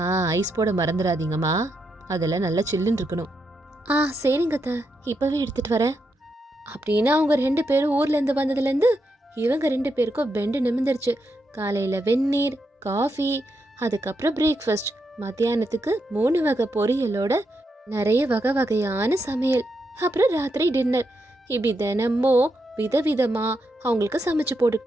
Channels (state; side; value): normal; both; correlation 0.83